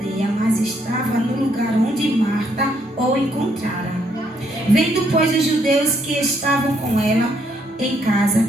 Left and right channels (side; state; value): both; normal; correlation 0.72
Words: mas estava no lugar onde Marta o encontrara. Vendo, pois, os judeus que estavam com ela em casa